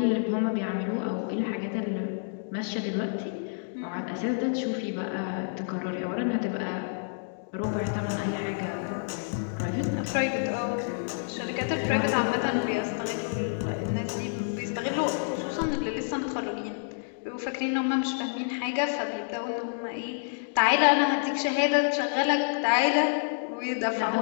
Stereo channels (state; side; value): silent; right; digital silence